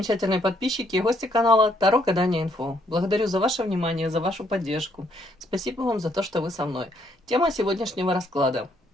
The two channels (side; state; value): both; normal; correlation 0.70